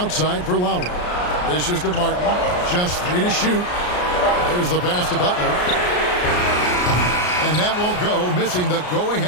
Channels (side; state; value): right; late; 33 ms